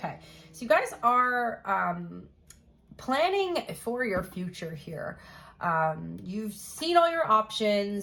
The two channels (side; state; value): both; identical; correlation 1.00